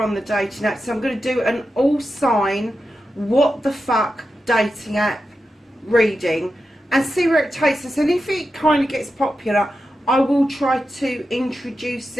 the dating apps, so I'm going to do an all sign what the fuck dating app reading and see where it takes us. And if it kind of gets popular, I will try to introduce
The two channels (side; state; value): both; normal; correlation 0.90